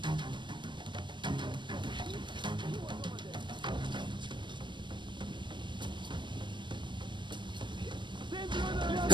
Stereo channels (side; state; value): left; late; 0.22 ms